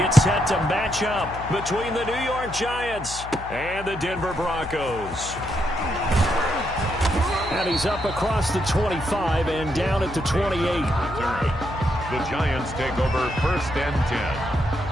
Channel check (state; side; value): noise; left; hum, 13 dB below the sound